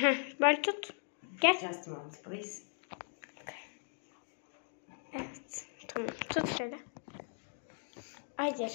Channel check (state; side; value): silent; right; digital silence